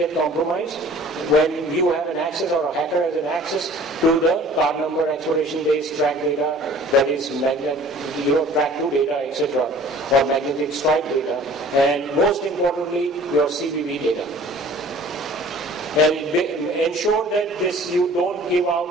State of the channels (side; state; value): both; normal; correlation 0.49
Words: compromised? When you have an access or a hacker has an access to the card number, expiration days, track data, that is track to data, etc., or magnetic stripe data, and most importantly, your CVV data. And ensure that you don't give out